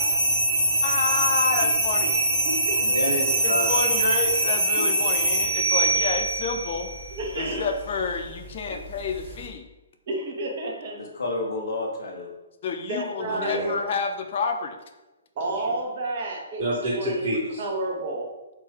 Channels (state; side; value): inverted; both; correlation -0.54